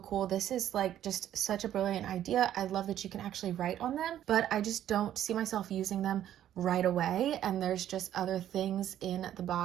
cool. This is like just such a brilliant idea. I love that you can actually write on them, but I just don't see myself using them right away, and there's just other things in the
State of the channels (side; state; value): left; quieter; 11.4 dB